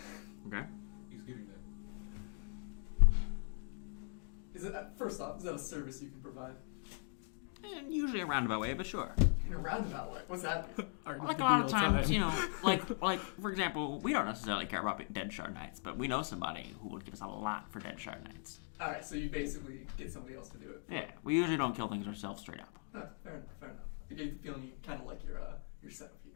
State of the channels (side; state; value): right; silent; 51 dB below the other